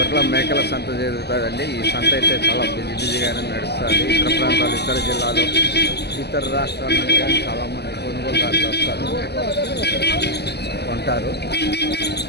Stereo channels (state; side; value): late; right; 0.48 ms